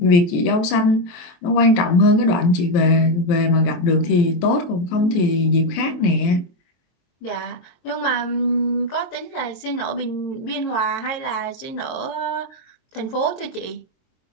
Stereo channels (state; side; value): late; right; 23 ms